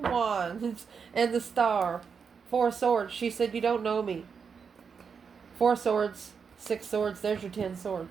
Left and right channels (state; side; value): quieter; left; 6.1 dB